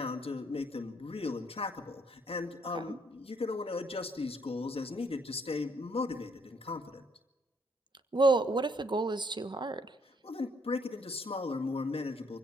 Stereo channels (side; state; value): both; normal; correlation 0.68